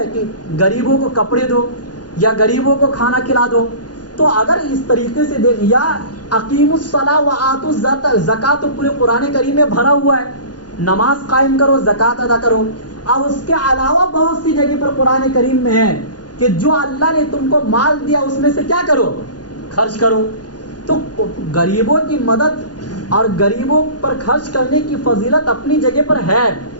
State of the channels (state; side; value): late; right; 0.69 ms